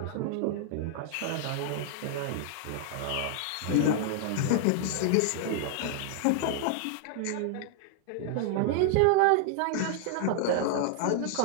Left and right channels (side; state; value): both; different; correlation -0.01